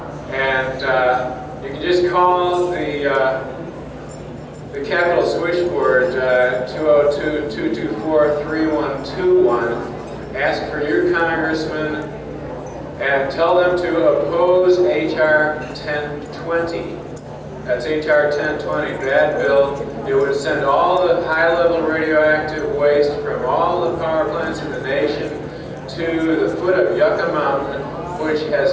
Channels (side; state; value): both; identical; correlation 1.00